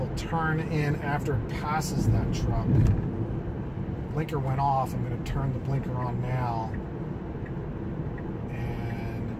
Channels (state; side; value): identical; both; correlation 1.00